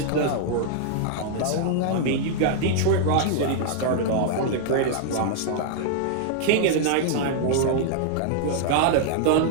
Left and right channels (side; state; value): both; different; correlation -0.01